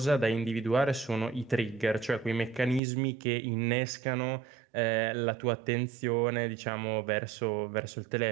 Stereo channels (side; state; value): left; drops out; at 2.8 s